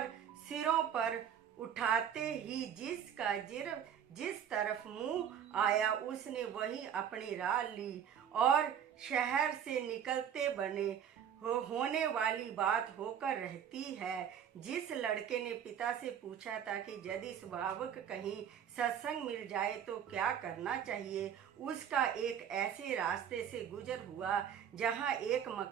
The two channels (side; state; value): left; quieter; 8.8 dB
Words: सिरों पर उठाते ही जिस तरफ मुंह आया उसने वही अपनी राह ली और शहर से निकलते बने। होने वाली बात होकर रहती है। जिस लड़के ने पिता से पूछा था कि यदि स्वाभाविक कहीं सत्संग मिल जाए तो क्या करना चाहिए, उसका एक ऐसे रास्ते से गुजर हुआ जहां एक